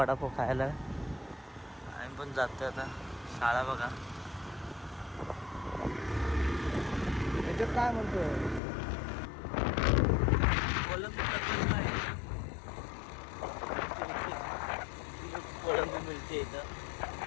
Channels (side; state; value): right; drops out; at 8.6 s